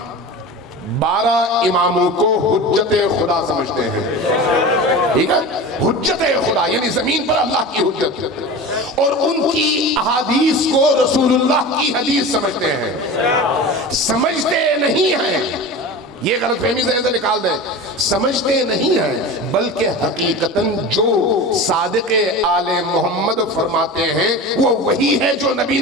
12 اماموں کو حجت خدا سمجھتے ہیں. ٹھیک ہے، حجت خدا یعنی زمین پر اللہ کی حجت، اور ان کی احادیث کو رسول اللہ کی حدیث سمجھتے ہیں. سمجھتے نہیں ہیں، یہ غلط فہمی ذہن سے نکال دیں، سمجھتے نہیں ہیں بلکہ حقیقتاً جو صادق آل محمد فرماتے ہیں وہ وہی ہے جو نبی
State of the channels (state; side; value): normal; both; correlation 0.31